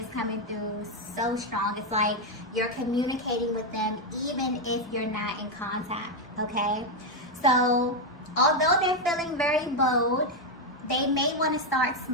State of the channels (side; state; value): both; normal; correlation 0.04